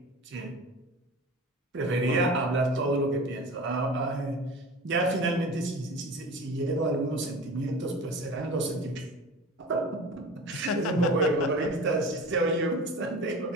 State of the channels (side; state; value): both; normal; correlation 0.36